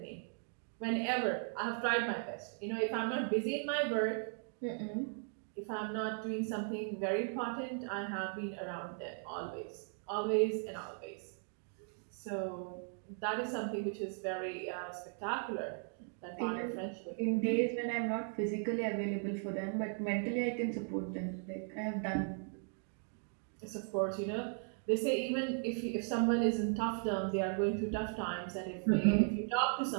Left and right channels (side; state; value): left; silent; 53 dB below the other